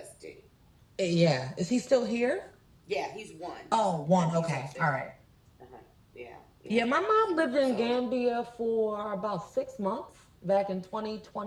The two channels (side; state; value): both; identical; correlation 1.00